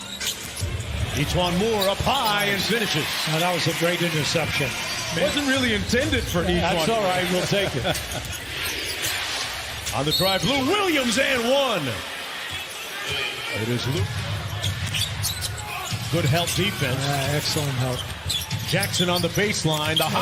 Etuan Moore up high and finishes. Now, that was a great interception. Wasn't really intended for Etuan. That's all right. We'll take it. On the drive, Lou Williams and 1. It is Lou. Good help defense. Excellent help. Jackson on the baseline. The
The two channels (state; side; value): identical; both; correlation 1.00